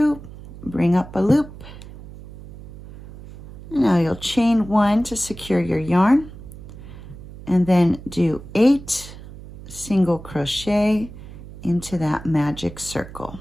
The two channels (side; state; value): right; noise; hum, 15 dB below the sound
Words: bring up a loop. And now you'll chain 1 to secure your yarn, and then do 8 single crochet into that magic circle.